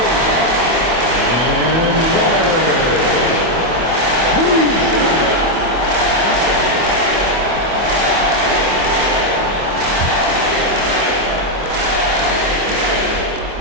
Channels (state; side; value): late; left; 25 ms